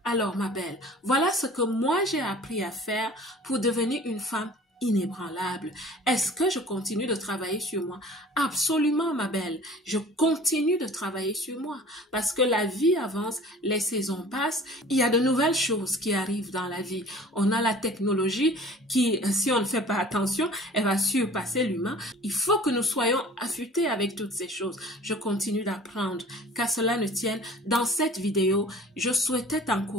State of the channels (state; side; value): normal; both; correlation 0.46